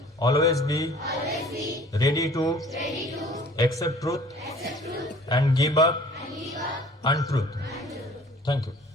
always be ready to accept truth and give up untruth. Thank you.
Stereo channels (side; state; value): both; normal; correlation 0.50